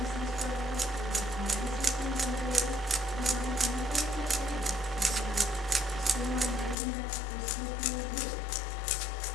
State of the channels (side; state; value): right; drops out; at 6.8 s